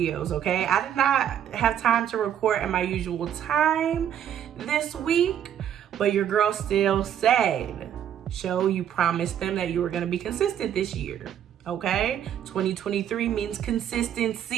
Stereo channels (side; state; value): left; quieter; 9.8 dB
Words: okay? I did not have time to record at my usual time this week, but your girl still said, you promised them that you were gonna be consistent this year. Okay, 2023 means